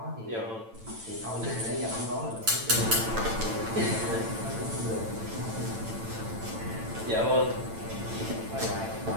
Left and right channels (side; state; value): left; late; 8.9 ms